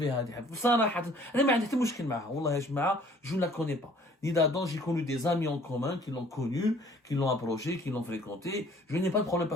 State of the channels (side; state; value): both; normal; correlation 0.56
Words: هذه بصراحة أنا ما عندي حتى مشكل معها والله يا جماعة je ne la connais pas ni d'Adam j'ai connu des amis en commun qui l'ont connue qui l'ont approchée qui l'ont fréquentée je n'ai pas de problème